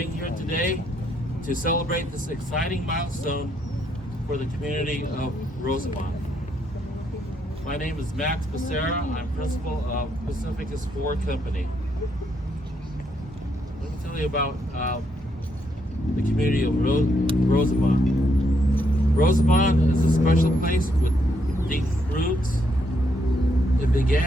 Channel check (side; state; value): both; normal; correlation 0.75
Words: here today to celebrate this exciting milestone for the community of Rosenbaum. My name is Max Becerra. I'm principal of Pacificus Ford Company. Let me tell you about the community of Rosenbaum. Rosenbaum is a special place with deep roots. It